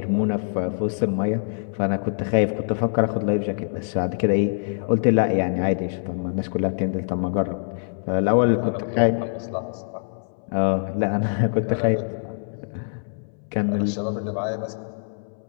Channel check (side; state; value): right; silent; 62 dB below the other